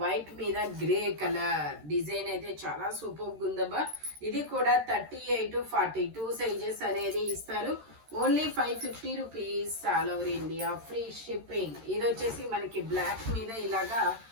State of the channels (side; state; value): left; late; 13 ms